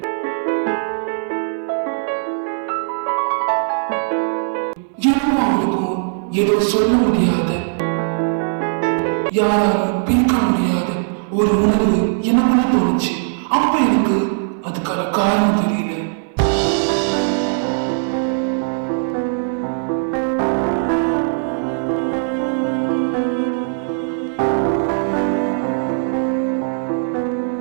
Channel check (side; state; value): left; silent; 59 dB below the other